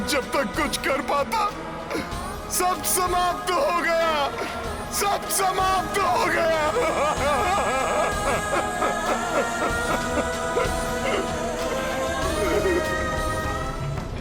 जब तक कुछ कर पाता सब समाप्त हो गया, सब समाप्त हो गया।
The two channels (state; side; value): identical; both; correlation 1.00